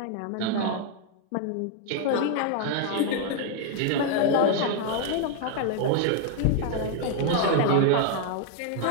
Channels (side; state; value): both; different; correlation 0.00